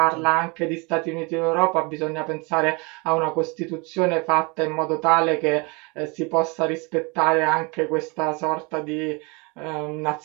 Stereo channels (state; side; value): quieter; left; 29.1 dB